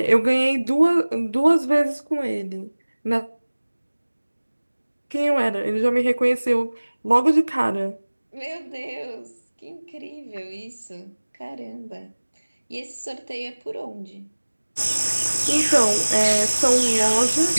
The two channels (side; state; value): both; inverted; correlation -1.00